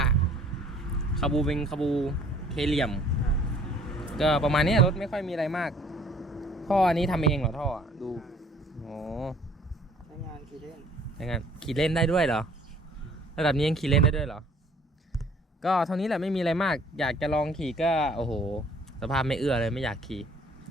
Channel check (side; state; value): both; normal; correlation 0.56